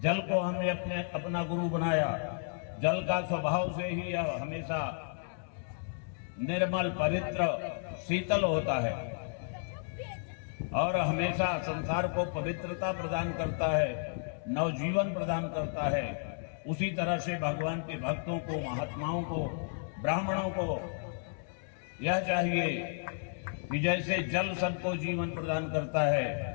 जल को हमने अपना गुरु बनाया। जल का स्वभाव से ही यह हमेशा निर्मल, पवित्र, शीतल होता है और हमेशा संसार को पवित्रता प्रदान करता है, नवजीवन प्रदान करता है। उसी तरह से भगवान के भक्तों को, महात्माओं को, ब्राह्मणों को यह चाहिए कि जैसे जल सबको जीवन प्रदान करता है,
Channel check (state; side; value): silent; right; digital silence